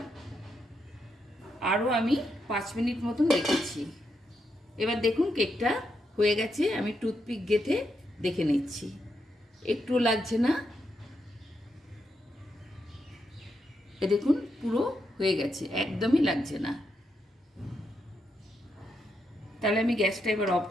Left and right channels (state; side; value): normal; both; correlation 0.82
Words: আরও আমি 5 মিনিট মতন রেখেছি। এবার দেখুন কেকটা হয়ে গেছে। আমি টুথপিক গেঁথে দেখে নিচ্ছি, একটু লাগছে না। এ দেখুন পুরো হয়ে গেছে, একদমই লাগছে না। তাহলে আমি গ্যাসটা এবার অফ